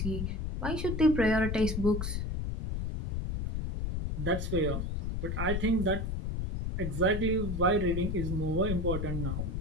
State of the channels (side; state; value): left; noise; rumble, 2 dB below the sound